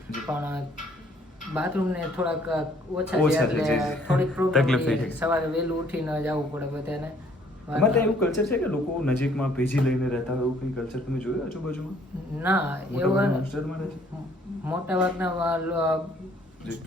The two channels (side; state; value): both; normal; correlation 0.62